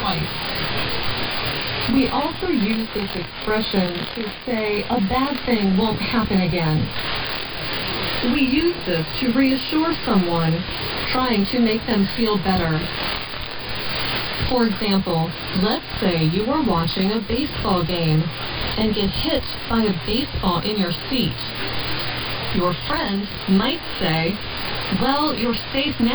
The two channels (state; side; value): identical; both; correlation 1.00